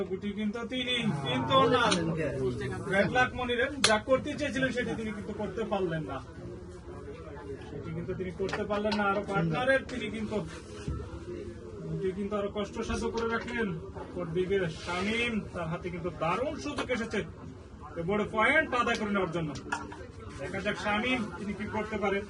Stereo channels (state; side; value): identical; both; correlation 1.00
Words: গুটি কিন্তু তিনি, কিন্তু না, ব্যাড লাক মনিরের। যা করতে চেয়েছিলেন সেটি তিনি কিন্তু করতে পারলেন না, আরো পার্টনারের তিনি কিন্তু আরো কষ্টসাধ্য করে রাখলেন। অপরদিকে শামীম, তার হাতে কিন্তু দারুণ সুযোগ এসেছে বড় পয়েন্ট আদায় করে নেওয়ার জন্য। দেখা যাক শামীম তিনি কি করতে পারে,